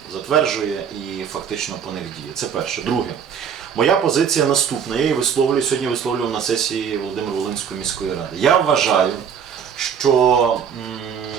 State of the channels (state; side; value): quieter; left; 7.5 dB